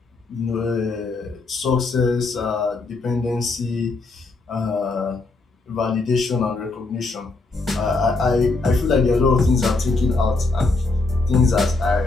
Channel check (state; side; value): quieter; right; 3.5 dB